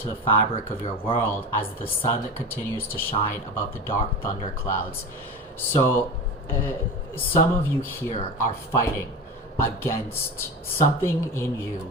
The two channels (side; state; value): both; normal; correlation 0.27